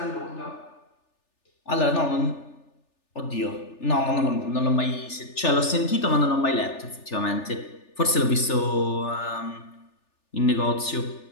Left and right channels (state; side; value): late; right; 3.4 ms